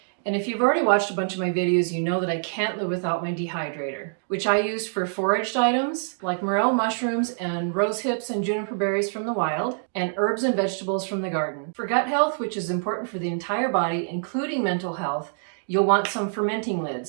And if you've already watched a bunch of my videos, you know that I can't live without my dehydrator, which I use for foraged items like morel mushrooms and rose hips and juniper berries from the wild, and herbs and vegetables from the garden. For gut health, which is important for the entire body, including mental health, you'll want some fermenting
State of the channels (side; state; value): left; silent; digital silence